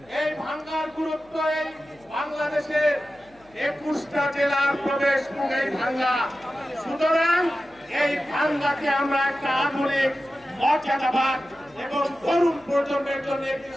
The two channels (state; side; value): noise; left; hum, 29 dB below the sound